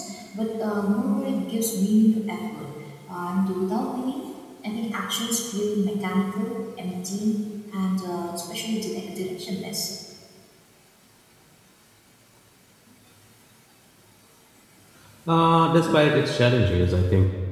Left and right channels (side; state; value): both; identical; correlation 1.00